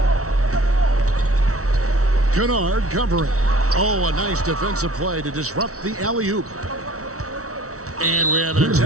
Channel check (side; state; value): left; late; 0.64 ms